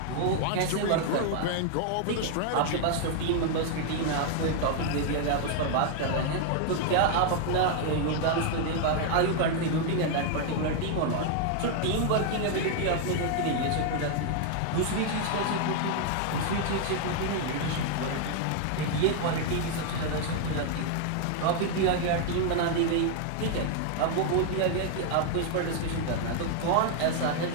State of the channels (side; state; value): both; different; correlation 0.00